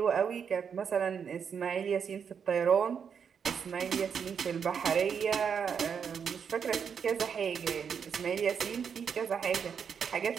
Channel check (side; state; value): left; quieter; 7.0 dB